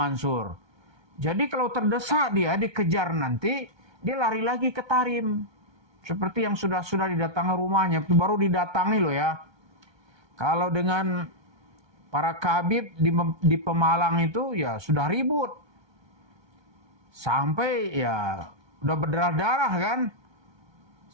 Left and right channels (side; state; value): left; late; 1.3 ms